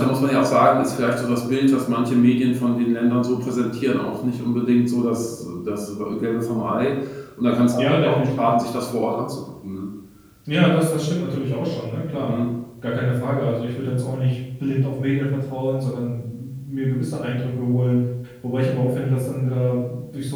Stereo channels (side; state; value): both; identical; correlation 1.00